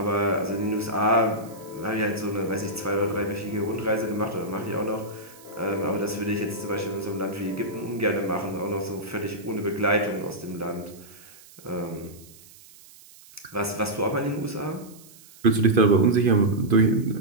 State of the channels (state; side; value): noise; right; hiss, 22 dB below the sound